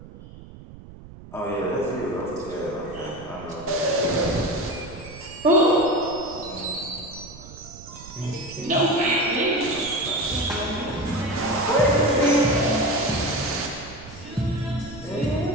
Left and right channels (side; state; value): right; noise; rumble, 17 dB below the sound